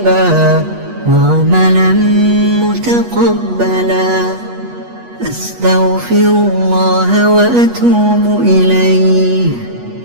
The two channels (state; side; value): late; left; 8.3 ms